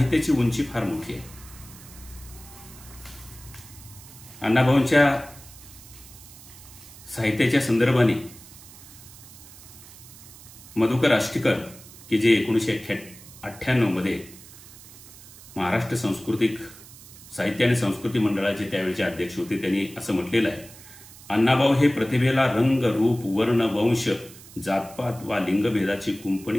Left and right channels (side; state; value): right; noise; hiss, 19 dB below the sound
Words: उंची फार मोठी आहे. अण्णाभाऊंच्या साहित्याच्या संदर्भाने मधुकर आष्टीकर, की जे 1998 मध्ये महाराष्ट्र सांस्कृतिक साहित्य आणि संस्कृती मंडळाचे त्यावेळेचे अध्यक्ष होते, त्यांनी असं म्हटलेलं आहे, अण्णाभाऊ हे प्रतिभेला रंग रूप वर्ण वंश जातपात वा लिंगभेदाची